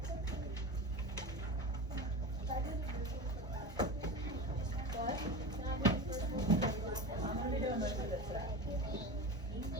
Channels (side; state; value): both; normal; correlation 0.28